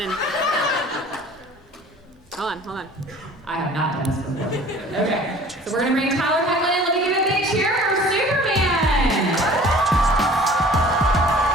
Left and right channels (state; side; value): normal; both; correlation 0.47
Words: hold on. I have not done this before. Okay, so we're gonna bring Tyler Hoechlin in. Let me give a big cheer for Superman.